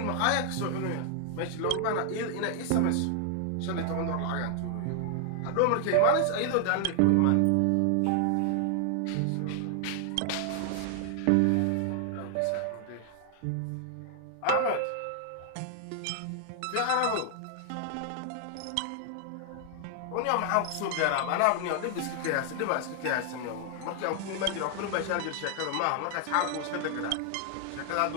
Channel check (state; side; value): different; both; correlation 0.00